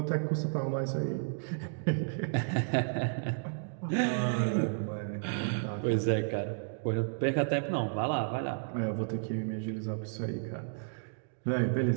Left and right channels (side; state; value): left; silent; digital silence